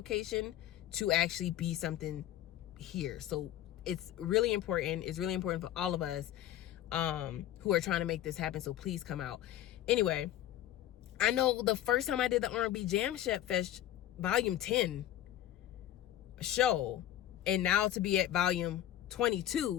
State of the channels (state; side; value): quieter; right; 12.6 dB